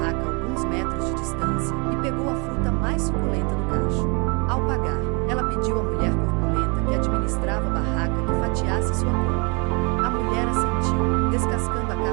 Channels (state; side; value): quieter; left; 31.5 dB